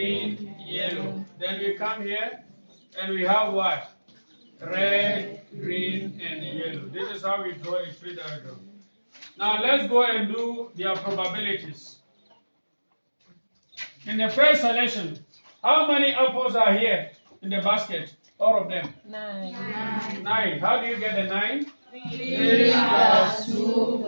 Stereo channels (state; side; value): inverted; both; correlation -1.00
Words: yellow. Then we come here and we have what? Red, green, and yellow. This is how we draw a tree diagram. Now let's go and do their probabilities. In the first selection, how many apples are here in the basket? All of them? 9. 9. How do you get the 9? 3 plus 2